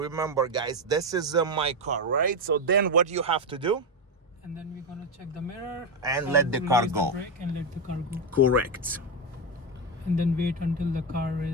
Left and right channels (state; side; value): normal; both; correlation 0.09